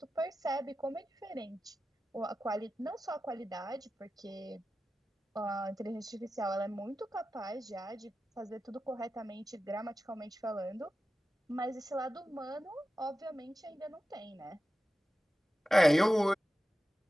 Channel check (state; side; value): normal; both; correlation 0.93